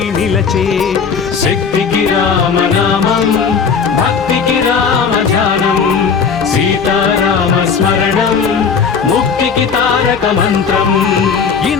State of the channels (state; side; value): quieter; right; 6.0 dB